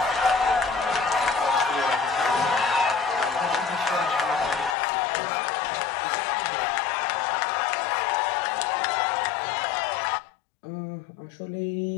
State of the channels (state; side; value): drops out; right; at 4.8 s